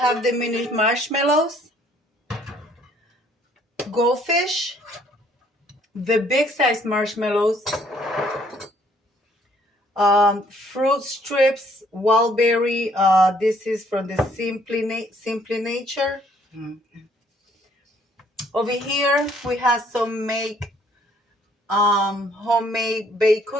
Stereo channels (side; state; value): both; normal; correlation 0.64